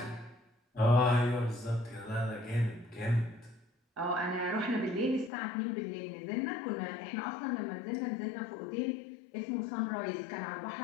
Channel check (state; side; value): drops out; right; at 5.3 s